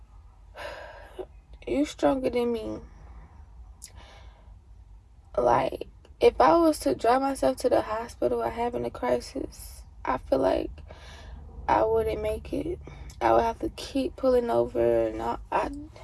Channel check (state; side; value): identical; both; correlation 1.00